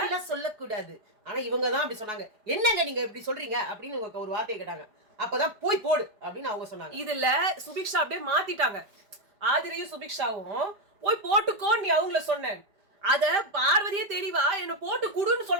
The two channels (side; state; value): left; late; 5.0 ms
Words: சொல்லக்கூடாது. ஆனா இவங்க தான் அப்படி சொன்னாங்க. என்னங்க நீங்க இப்படி சொல்றீங்க அப்படின்னு இவங்க ஒரு வார்த்தையை கேட்டாங்க. அப்பதான் போய் போடு அப்படின்னு அவங்க சொன்னாங்க. இதுல சுபிக்ஷா அப்படியே மாத்திட்டாங்க. ஆதிரையும் சுபிக்ஷாவும் போய் போட்டுக்கோ நீ அவங்கள சொன்னேன். அத பார்வதியே தெரியவா என்ன போட்டு குடுன்னு